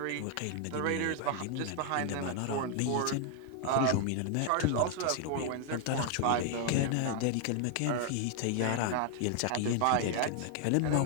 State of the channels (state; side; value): different; both; correlation 0.00